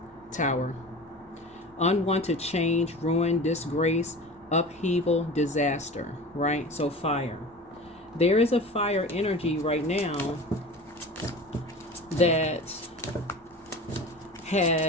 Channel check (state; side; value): normal; both; correlation 0.36